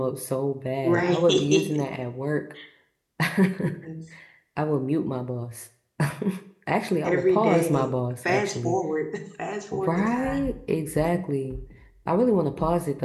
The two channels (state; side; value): identical; both; correlation 1.00